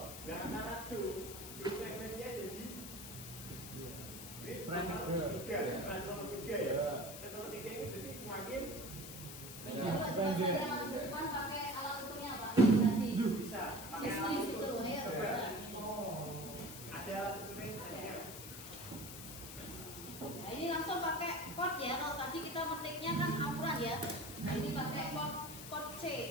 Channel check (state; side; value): noise; left; hiss, 10 dB below the sound